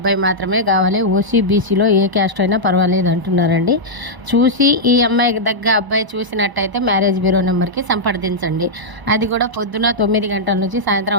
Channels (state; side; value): late; left; 1.0 ms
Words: మాత్రమే కావాలి. ఓసీ బీసీలో ఏ క్యాస్ట్ అయినా పర్వాలేదు అంటున్నారండి. చూసి ఈ అమ్మాయికి దగ్గర అబ్బాయి చూసినట్టయితే మ్యారేజ్ బ్యూరో నెంబర్కి సంప్రదించండి. అది కూడా పొద్దున 9 గంటల నుంచి